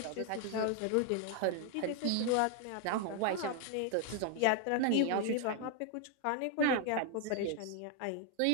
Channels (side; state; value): both; different; correlation 0.00